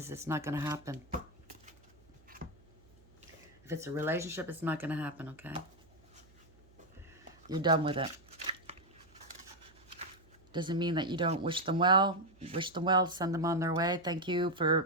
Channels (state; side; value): noise; right; hum, 28 dB below the sound